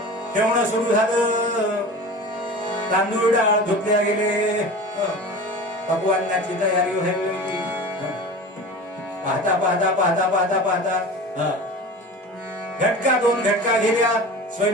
ठेवणं सुरू झालं, तांदूळ डाळ धुतल्या गेले, पकवानाची तयारी व्हायला लागली. पाहता पाहता पाहता पाहता पाहता घटका दोन घटका गेल्या,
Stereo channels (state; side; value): normal; both; correlation 0.35